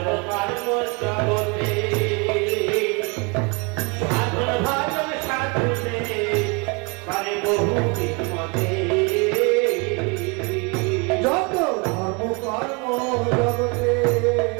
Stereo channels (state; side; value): quieter; left; 31.1 dB